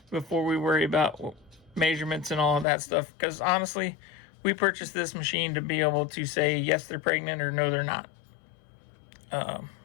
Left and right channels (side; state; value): right; drops out; at 2.7 s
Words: before we worry about measurements and all of that stuff. Because honestly, we purchased this machine to be able to say yes, they're pregnant or no, they're not. And